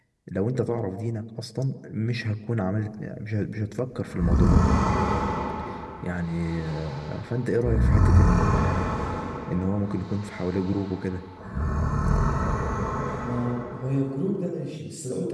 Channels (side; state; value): both; identical; correlation 1.00